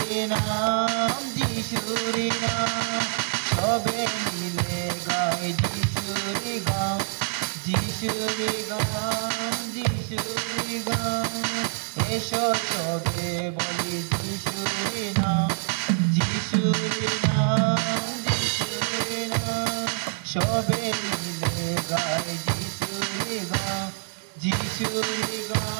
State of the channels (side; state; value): left; silent; digital silence